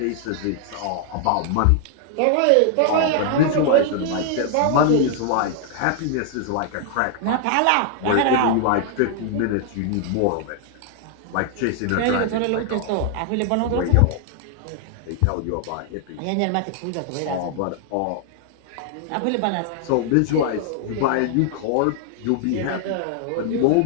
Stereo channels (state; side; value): different; both; correlation 0.00